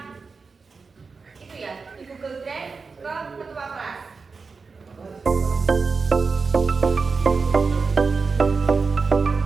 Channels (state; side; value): quieter; left; 4.7 dB